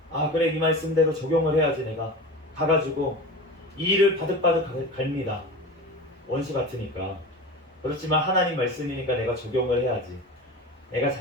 그래 이 말씀대로 적용을 해야지 내가 가가지고 이 일을 바득바득 갈니다. 원수 같으니까. 그렇지만 하나님 말씀이니까 내가 적용을 해야지. 내가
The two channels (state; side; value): normal; both; correlation 0.31